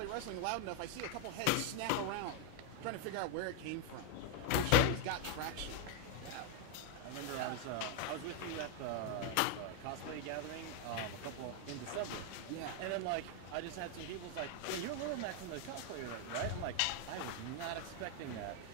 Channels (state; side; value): different; both; correlation 0.01